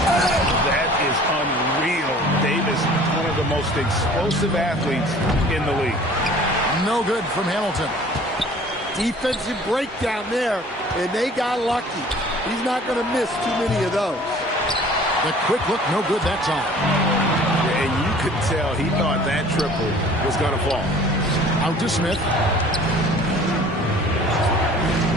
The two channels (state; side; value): normal; both; correlation 0.49